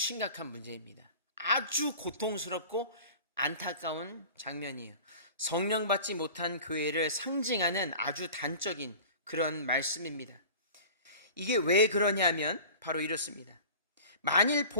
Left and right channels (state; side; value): inverted; both; correlation -0.41